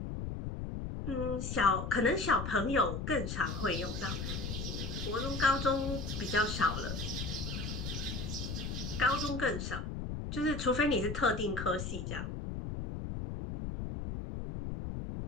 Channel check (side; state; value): left; noise; rumble, 4 dB below the sound